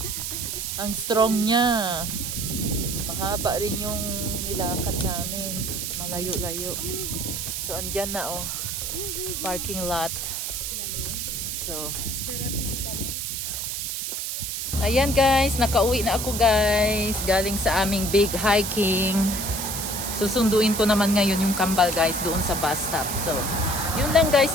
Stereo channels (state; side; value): noise; right; hiss, 3 dB below the sound